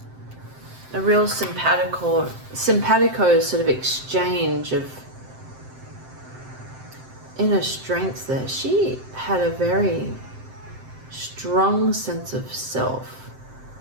a real simpatico sort of exchange of inner strength there. She had a very strong sense of self,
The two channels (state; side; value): late; left; 7.7 ms